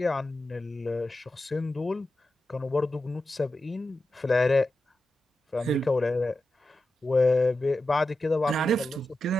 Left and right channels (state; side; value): normal; both; correlation 0.91